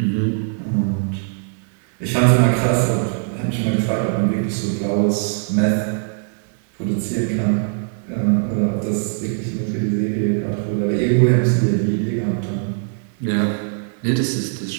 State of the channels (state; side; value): silent; left; 65 dB below the other